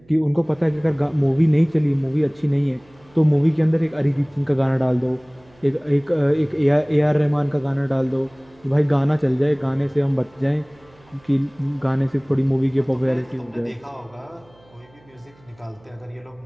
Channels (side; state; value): right; noise; hum, 30 dB below the sound